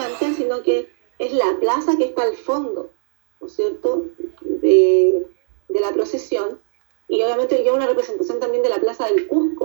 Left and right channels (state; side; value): silent; left; 58 dB below the other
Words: sino que es la plaza que está al fondo, ¿no es cierto?, de la procesión. Y obviamente lleva una representación también de la plaza del